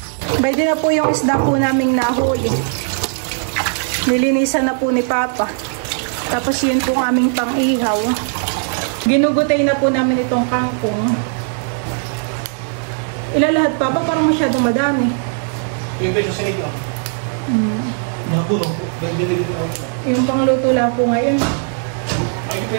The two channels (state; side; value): silent; left; 59 dB below the other